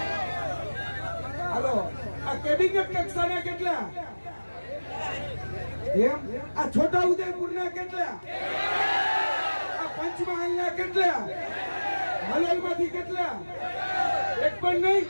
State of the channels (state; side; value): inverted; both; correlation -1.00